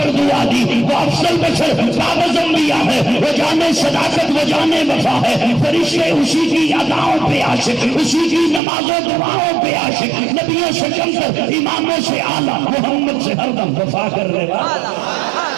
دعا دی، وہ افضل بشر کاغذ انبیاء ہے، وہ جانے صداقت، وہ جانے وفا ہے، فرشتے اسی کی اداؤں پہ عاشق، اسی کی نماز و دعاؤں پہ عاشق، نبیوں سے کم کر، اماموں سے اعلیٰ، محمد سے ہر دم وفا کرنے والا۔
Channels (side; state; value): left; drops out; at 8.6 s